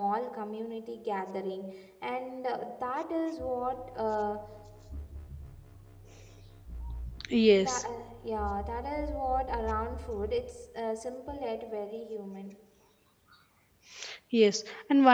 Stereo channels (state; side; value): identical; both; correlation 1.00